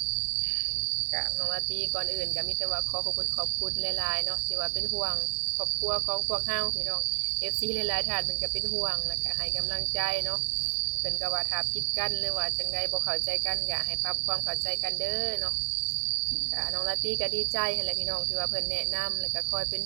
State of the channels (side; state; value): left; silent; 58 dB below the other